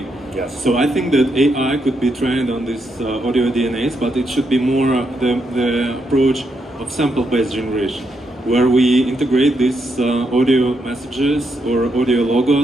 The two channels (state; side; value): normal; both; correlation 0.80